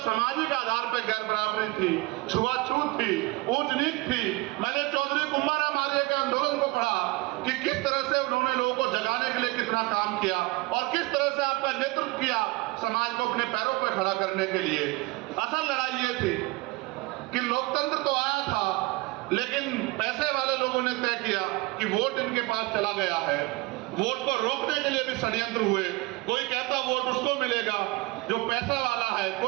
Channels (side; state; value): left; quieter; 22.5 dB